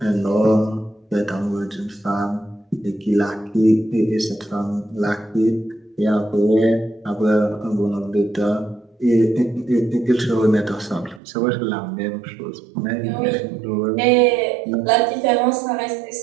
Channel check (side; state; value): left; drops out; at 11.2 s